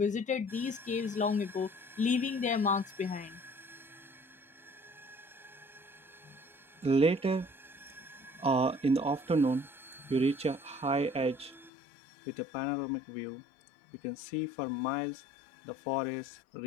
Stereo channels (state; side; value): drops out; right; at 11.7 s